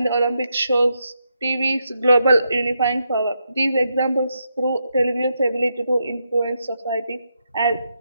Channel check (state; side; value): inverted; both; correlation -0.83